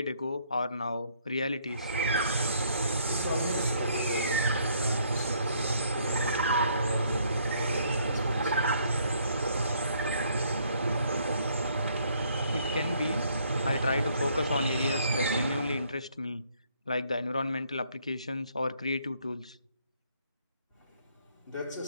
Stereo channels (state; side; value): inverted; both; correlation -0.66